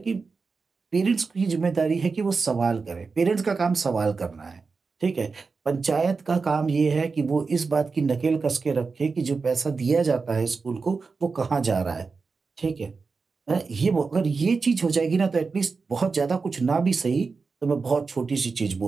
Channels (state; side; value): quieter; left; 4.6 dB